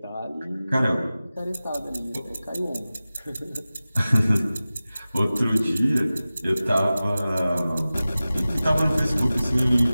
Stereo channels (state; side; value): inverted; both; correlation -0.96